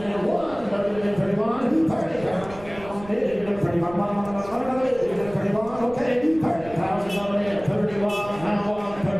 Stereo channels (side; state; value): right; noise; rumble, 18 dB below the sound